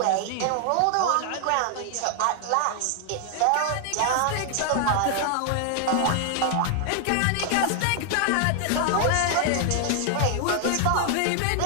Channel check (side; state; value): both; different; correlation 0.00